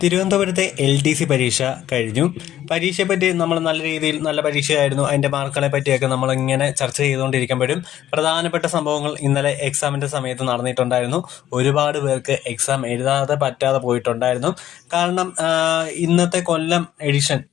തിരുവനന്തപുരത്തെ LDC പരീക്ഷ കഴിഞ്ഞു. പരീക്ഷയെപ്പറ്റി നമ്മൾ നല്ല രീതിയിൽ നല്ല പരീക്ഷയായിരുന്നു, അതിൻ്റെ മാർക്കുകളെ പറ്റിയൊക്കെ നമ്മളിങ്ങനെ ചർച്ച ചെയ്തുകൊണ്ടിരിക്കുമ്പോഴും പ്രധാനപ്പെട്ട സംഭവങ്ങൾ ഇന്നലെ എക്സാമിൻ്റെ സമയത്ത് നടന്നിട്ടുണ്ടായിരുന്നു. ഒരുപാട് പേർക്ക് എക്സാം എഴുതാതെ പറ്റാതെ പോയിട്ടുണ്ടായിരുന്നു. കാരണം ഇന്നത്തെ കൊല്ലം എഡിഷൻ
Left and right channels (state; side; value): quieter; right; 12.2 dB